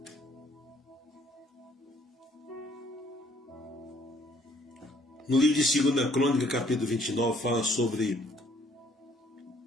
No livro de 2 Crônica, capítulo 29, fala sobre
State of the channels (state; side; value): normal; both; correlation 0.63